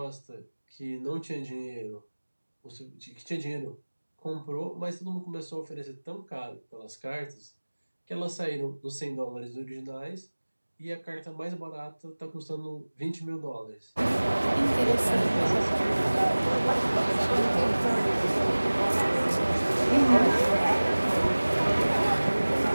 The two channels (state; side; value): inverted; both; correlation -1.00